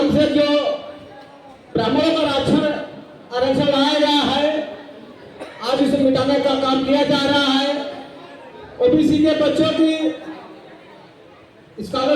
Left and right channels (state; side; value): identical; both; correlation 1.00